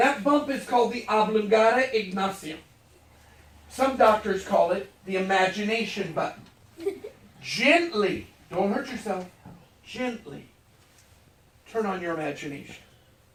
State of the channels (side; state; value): both; identical; correlation 1.00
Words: bump is called the oblongata ignacium. Some doctors call it the imagination button. Gently, don't hurt yourself, gently turn on your imagination.